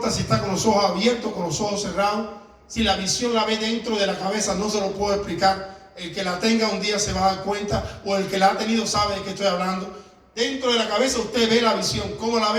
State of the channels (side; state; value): both; identical; correlation 1.00